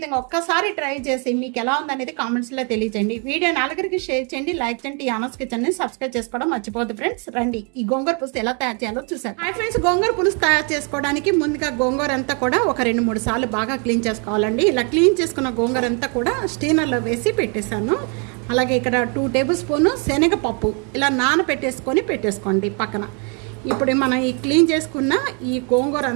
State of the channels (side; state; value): left; quieter; 36.6 dB